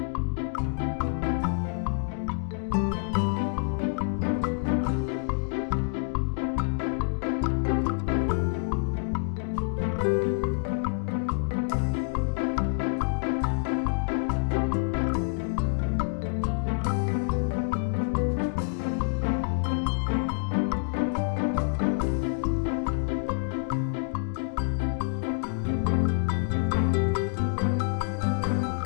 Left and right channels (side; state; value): right; silent; digital silence